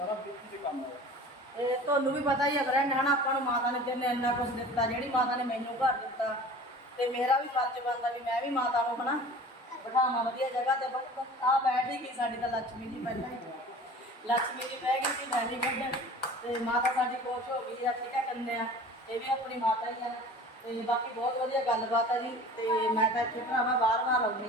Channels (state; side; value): normal; both; correlation 0.42